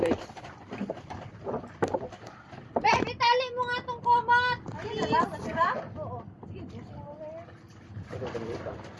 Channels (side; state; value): both; identical; correlation 1.00